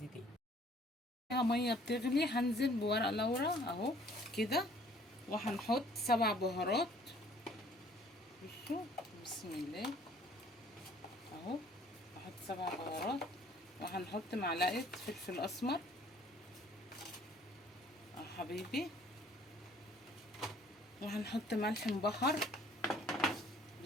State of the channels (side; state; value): both; normal; correlation 0.57